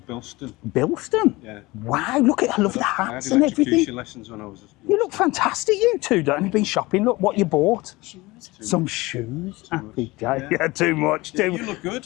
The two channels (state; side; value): quieter; right; 21.3 dB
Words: Bilston. Bilston? Yeah. Wow, look at, I love the I hats had and electrocution everything. lessons when I was. You look fantastic, you two. Don't you been shopping? Look what you bought. Some shoes. Happy day. Yeah, too much. You look good.